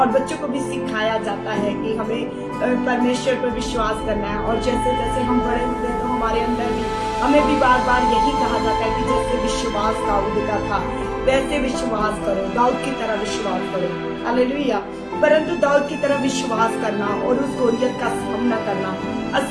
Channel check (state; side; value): identical; both; correlation 1.00